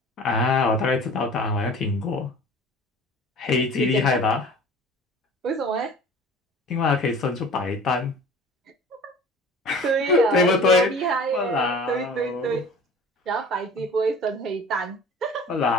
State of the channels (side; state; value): both; normal; correlation 0.43